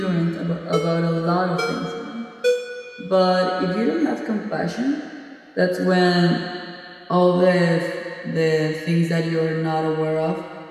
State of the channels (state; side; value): identical; both; correlation 1.00